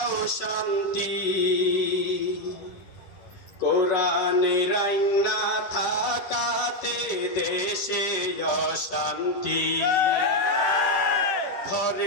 শান্তি, কোরআনের আইন না থাকাতে দেশে অশান্তি।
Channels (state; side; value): late; right; 10 ms